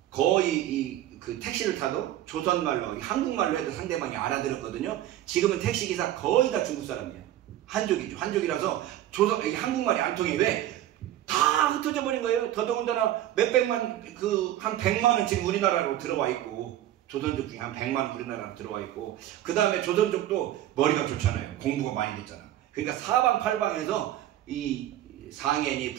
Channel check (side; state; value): left; quieter; 13.0 dB